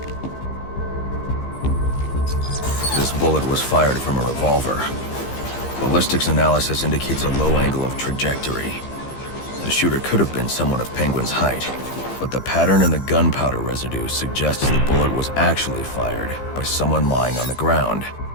This bullet was fired from a revolver. Ballistics analysis indicates a low angle of trajectory. The shooter could have been someone of Penguin's height, but the pattern in the gunpowder residue suggests the bullet was actually fired by someone lying on the ground.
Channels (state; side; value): late; right; 15 ms